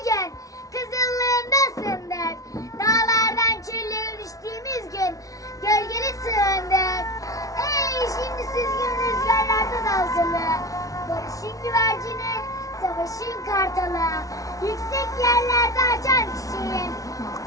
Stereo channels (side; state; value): right; late; 0.17 ms